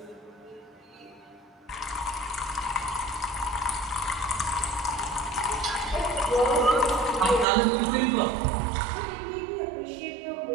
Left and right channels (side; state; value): left; drops out; at 7.5 s